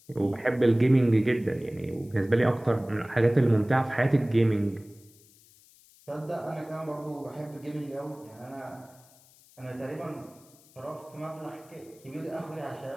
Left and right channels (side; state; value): left; noise; hiss, 27 dB below the sound